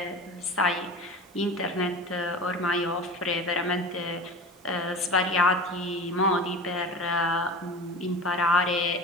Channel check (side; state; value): both; normal; correlation 0.33